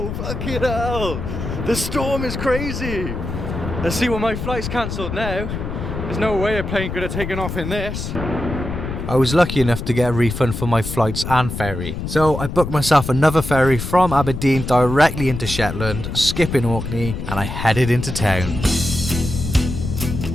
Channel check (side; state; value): left; noise; rumble, 6 dB below the sound